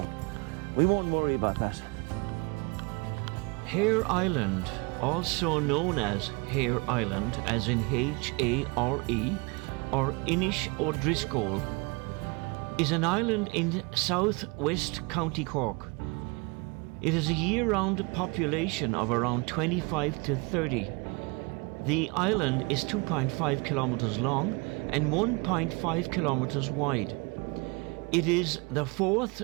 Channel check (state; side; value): quieter; left; 29.3 dB